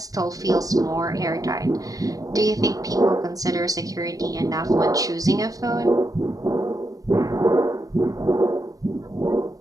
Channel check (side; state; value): left; late; 0.17 ms